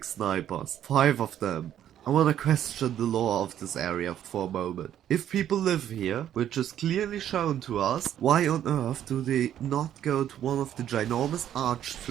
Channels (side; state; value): left; quieter; 10.7 dB